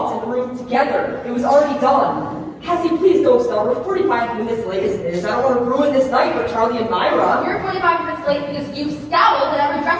in the room together. It was already done. Cassie, please don't start. We're 45 minutes late as it is. I don't want to ruin this night for Charlie and Myra. You're 45 minutes late because you scowled at every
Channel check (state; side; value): identical; both; correlation 1.00